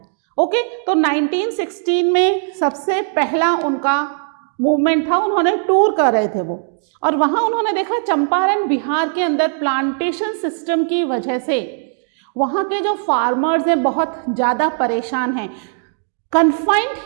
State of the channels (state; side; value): silent; left; digital silence